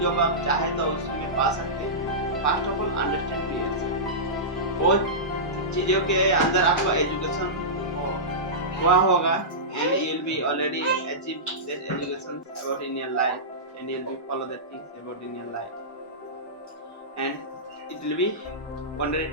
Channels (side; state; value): both; normal; correlation -0.16